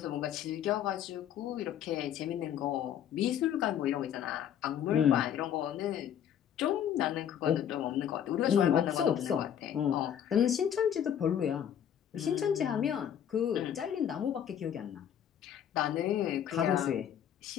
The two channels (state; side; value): quieter; right; 9.5 dB